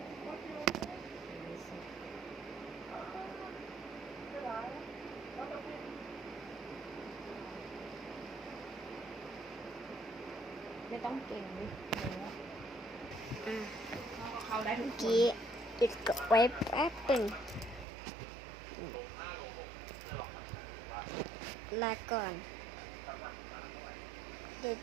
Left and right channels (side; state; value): left; drops out; at 17.9 s